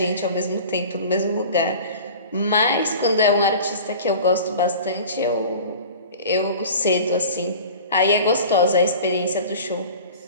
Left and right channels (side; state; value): both; inverted; correlation -0.40